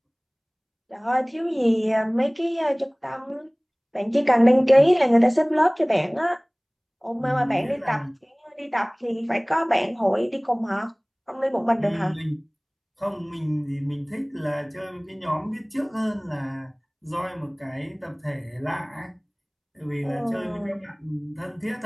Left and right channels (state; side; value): identical; both; correlation 1.00